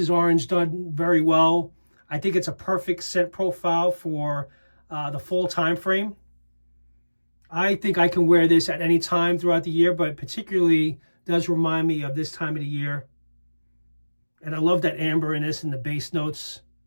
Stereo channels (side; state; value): both; inverted; correlation -1.00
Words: orange done very well. I think it's a perfect scent profile for the fall time frame. I think I can wear this at any time throughout the year, but particularly does remind me of this time of the year. And I love that amber in this and the base notes,